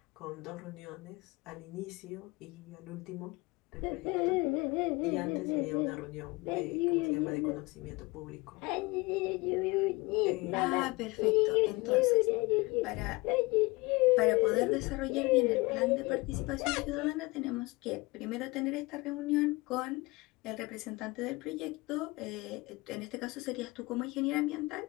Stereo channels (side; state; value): right; quieter; 23.9 dB